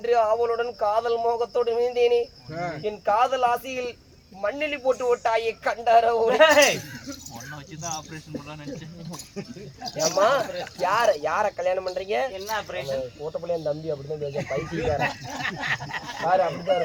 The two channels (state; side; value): identical; both; correlation 1.00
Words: ஆவலுடன் காதல் மோகத்தோடு இருந்தேனே, என் காதல் ஆசையில் மண்ணிலி போட்டு விட்டாயே கண்டாரோ. ஏமா யார கல்யாணம் பண்றீங்க? என்ன ஆபரேஷன்? ஓட்டப்பள்ளிய தம்பி அப்படிதான் பேச பைத்தியக்கார பாரு, அப்படிதான்